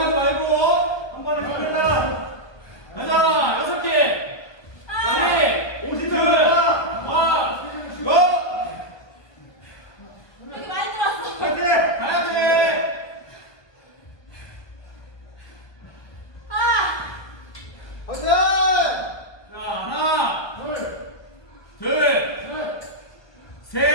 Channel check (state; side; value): late; right; 1.2 ms